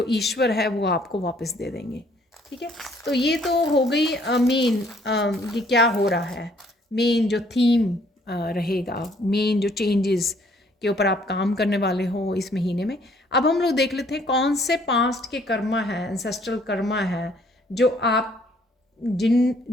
ईश्वर है वो आपको वापस दे देंगे, ठीक है। तो ये तो हो गई मेन, ये क्या हो रहा है, मेन जो थीम रहेगा, मेन जो चेंजेस के ऊपर आप काम करने वाले हो इस महीने में। अब हम लोग देख लेते हैं कौन से पास्ट के कर्मा है, एंसेस्ट्रल कर्मा है, जो आप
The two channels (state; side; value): normal; both; correlation 0.62